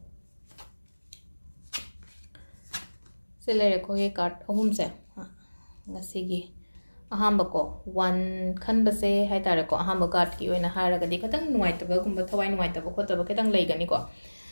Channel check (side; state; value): both; inverted; correlation -1.00